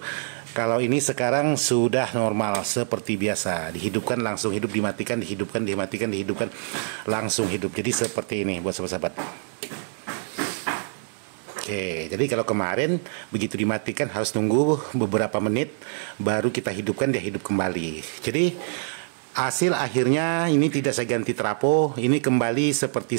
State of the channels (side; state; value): left; silent; digital silence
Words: Kalau ini sekarang sudah normal seperti biasa, dihidupkan langsung hidup, dimatikan dihidupkan, dimatikan dihidupkan langsung hidup. Jadi seperti ini buat sahabat-sahabat. Oke, jadi kalau kemarin begitu dimatikan harus tunggu beberapa menit baru kita hidupkan, dia hidup kembali. Jadi hasil akhirnya ini tidak saya ganti trapo, ini kembali